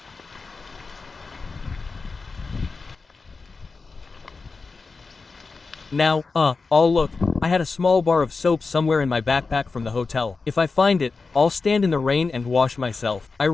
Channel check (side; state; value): right; quieter; 4.3 dB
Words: Now, oh look, I had a small bar of soap somewhere in my backpack from the hotel. If I find it, I'll stand in the rain and wash myself. I